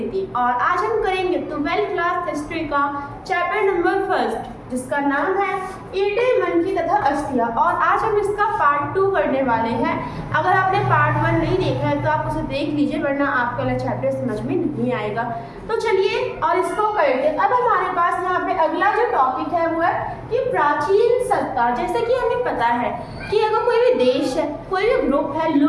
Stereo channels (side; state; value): both; identical; correlation 1.00